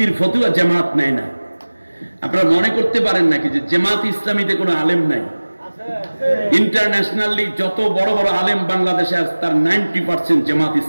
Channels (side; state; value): both; inverted; correlation -1.00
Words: ফতুয়া জামাত নেয় না। আপনারা মনে করতে পারেন নাকি যে জামাত ইসলামীতে কোনো আলেম নাই? ইন্টারন্যাশনালি যত বড় বড় আলেম বাংলাদেশে আছে তার 90% জামাত